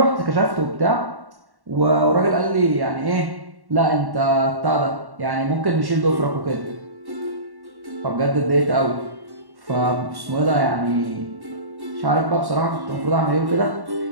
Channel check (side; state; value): left; late; 1.1 ms